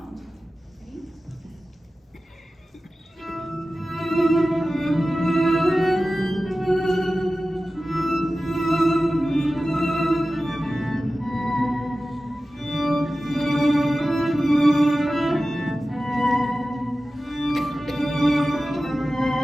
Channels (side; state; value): both; normal; correlation 0.95